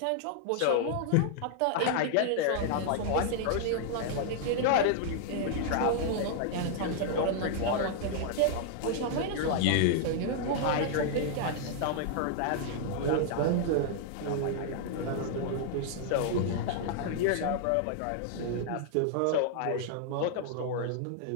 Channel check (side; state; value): both; different; correlation -0.01